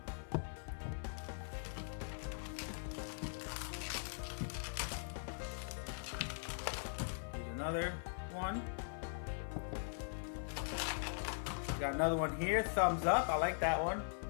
Here's another one. Got another one here, thumbs up. I like that one.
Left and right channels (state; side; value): silent; right; 50 dB below the other